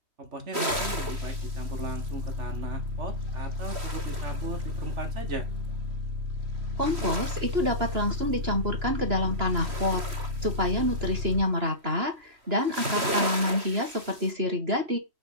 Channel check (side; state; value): left; late; 3.1 ms